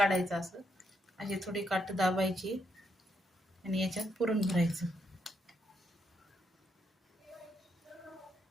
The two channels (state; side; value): normal; both; correlation 0.78